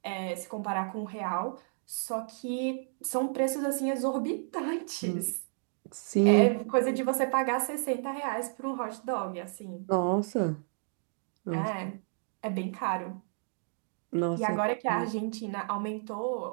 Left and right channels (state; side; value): silent; left; digital silence